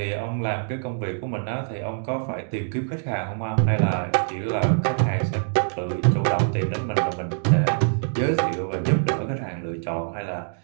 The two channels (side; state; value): left; silent; digital silence